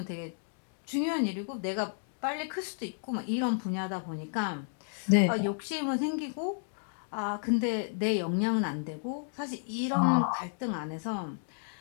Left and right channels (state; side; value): silent; right; digital silence